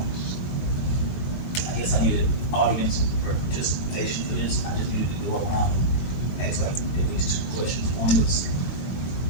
I guess I needed audience participation for this. I just needed to go around and ask like at least two questions. One was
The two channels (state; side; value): late; right; 21 ms